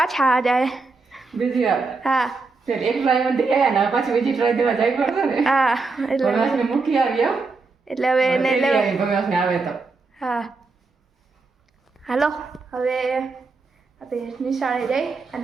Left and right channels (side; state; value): left; quieter; 4.1 dB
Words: જાય બીજી વાર। હા એક ટ્રાય માં ગયા ને પાછી બીજી ટ્રાય દેવા જાય પડશે ને। હા એટલે ભગવાનને મૂકી આવ્યો એટલે હવે એને લેવા ભગવાનને આવે તો હા હાલો હવે આપણે નિશાળે જઈ